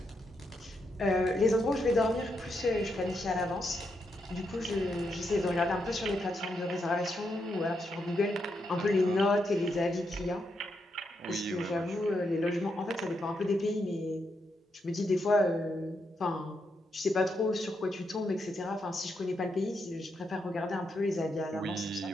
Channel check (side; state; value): both; normal; correlation 0.81